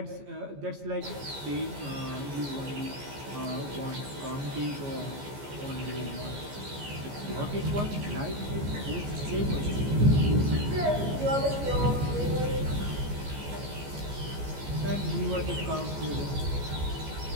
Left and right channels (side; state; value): left; late; 14 ms